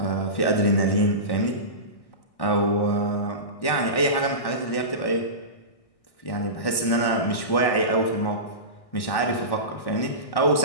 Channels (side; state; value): right; late; 1.1 ms